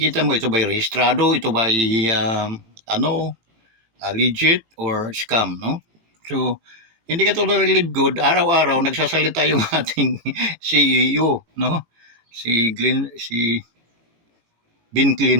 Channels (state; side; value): late; left; 18 ms